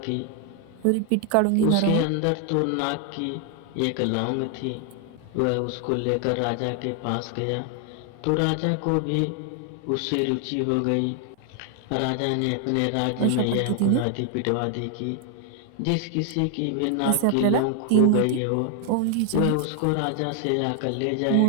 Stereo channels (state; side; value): different; both; correlation 0.00